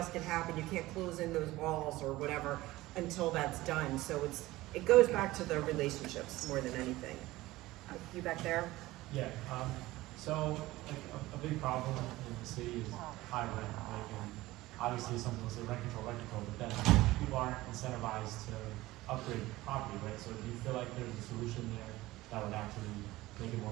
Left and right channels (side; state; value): left; quieter; 18.1 dB